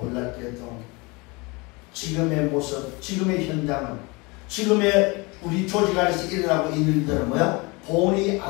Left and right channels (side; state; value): right; quieter; 26.7 dB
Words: 지금의 모습, 지금의 현장은, 지금의 우리 조직 안에서 일어나고 있는 일들은 뭐야? 본이